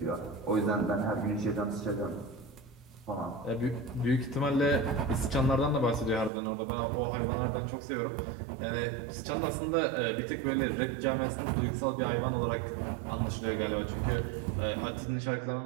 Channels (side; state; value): left; drops out; at 6.3 s